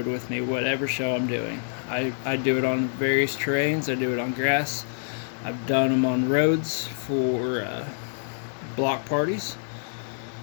with me, whatever show I'm doing. I do it on various terrains. I do it on grass. I've done them on roads for block parties.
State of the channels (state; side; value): silent; right; 61 dB below the other